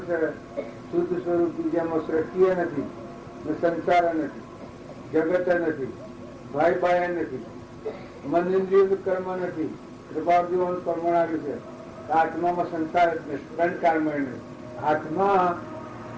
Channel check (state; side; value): identical; both; correlation 1.00